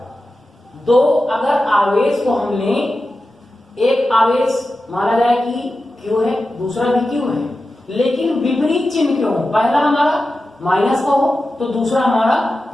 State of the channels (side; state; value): both; normal; correlation 0.92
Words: दो अगर आवेश को हम लें, एक आवेश माना जाए कि Q है, दूसरा भी Q है, लेकिन विपरीत चिन्ह क्यों हो, पहला हमारा माइनस का हो तो दूसरा हमारा